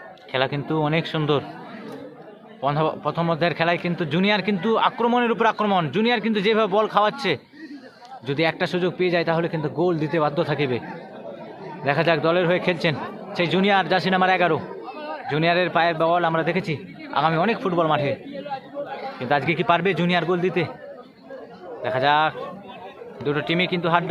খেলা কিন্তু অনেক সুন্দর। প্রথম অধ্যায়ের খেলায় কিন্তু জুনিয়র কিন্তু আক্রমণের উপর আক্রমণ। জুনিয়র কিন্তু যেভাবে বল খাওয়াচ্ছে, যদি একটা সুযোগ পেয়ে যায় তাহলে কিন্তু গোল দিতে বাধ্য থাকিবে। দেখা যাক, দলের হয়ে খেলছেন সেই জুনিয়র, জার্সি নাম্বার 11। জুনিয়রের পায়ের বল আমরা দেখেছি আগামী অনেক ফুটবল মাঠে, কিন্তু আজকে কি পারবে জুনিয়র গোল দিতে? দেখা যাক। দুটো টিমই কিন্তু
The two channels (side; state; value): both; identical; correlation 1.00